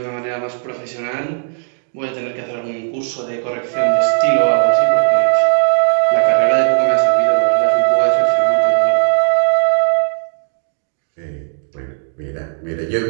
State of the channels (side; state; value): left; silent; digital silence